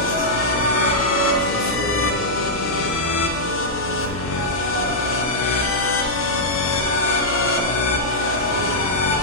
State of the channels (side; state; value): left; noise; hum, 12 dB below the sound